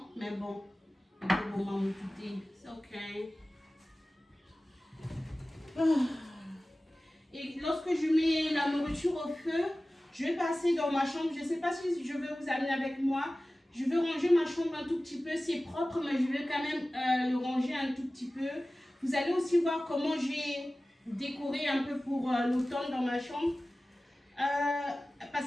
mais bon. C'est ok. Et lorsque je mets la nourriture au feu, je vais passer dans ma chambre. Je ne sais pas si je vais vous amener avec moi. Je vais ranger ma chambre un tout petit peu. C'est propre, mais je vais quand même le ranger un tout petit peu. Vous allez aussi voir comment j'ai décoré un peu pour l'automne dans ma chambre.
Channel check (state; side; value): normal; both; correlation 0.96